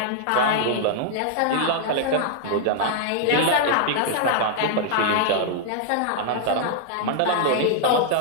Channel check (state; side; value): different; both; correlation -0.01